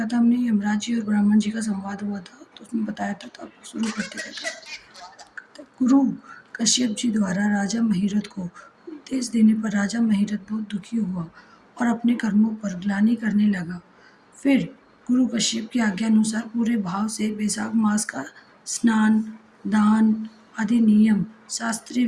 था हमने, यमराज जी और ब्राह्मण जी का संवाद हुआ था, तो उसमें बताया था। तो आप शुरू करते थे। गुरु कश्यप जी द्वारा राजा महिरथ को उपदेश देने पर राजा महिरथ बहुत दुखी हुआ और अपने कर्मों पर ग्लानि करने लगा। फिर गुरु कश्यप की आज्ञा अनुसार पूरे भाव से बैसाख मास का स्नान दान आदि नियम शास्त्रीय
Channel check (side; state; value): both; identical; correlation 1.00